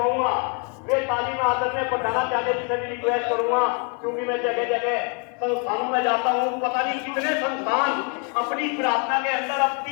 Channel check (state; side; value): quieter; right; 35.8 dB